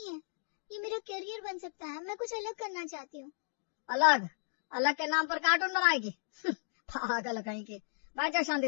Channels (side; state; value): right; silent; digital silence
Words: है, ये मेरा करियर बन सकता है। मैं कुछ अलग करना चाहती हूँ। अलग? अलग के नाम पर कार्टून बनाएगी? पागल कहीं की। बैठ जा